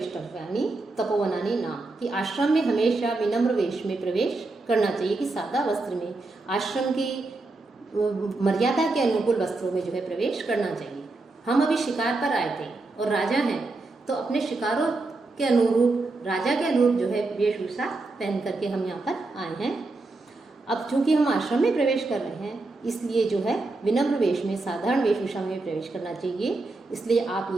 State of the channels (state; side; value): quieter; left; 3.3 dB